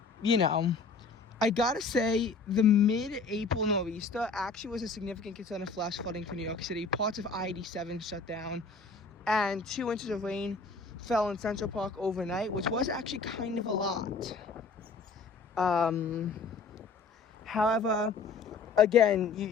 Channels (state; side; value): quieter; right; 4.3 dB